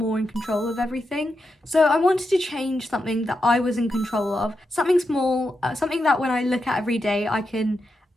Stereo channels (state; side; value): normal; both; correlation 0.87